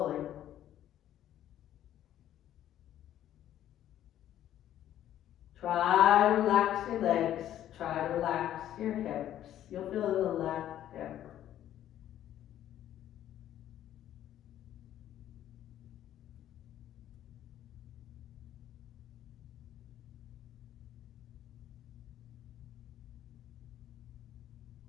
Try to relax your legs. Try to relax your hips. You'll feel it in the left hip.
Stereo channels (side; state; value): right; quieter; 11.8 dB